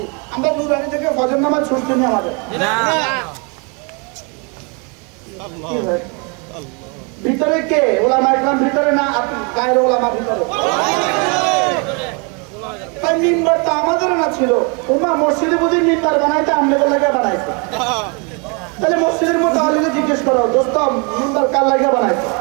আমরা নুরানি থেকে ফজর নামাজ ছুটতে নেই আমাদের। ভিতরে কে? ওলামা ইকরাম ভিতরে না গায়ের ওলামা ভিতরে? তাই মিম্বার তো আমাদের না ছিল। ওমা মসজিদে বুঝি মিম্বার বানাইতে আমলে লাগে বানাইছে, তাহলে মসজিদের মুতাআল্লিকে জিজ্ঞেস করো, দোস্ত মিম্বার কার লাগে বানাইছে?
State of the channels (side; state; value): left; quieter; 33.5 dB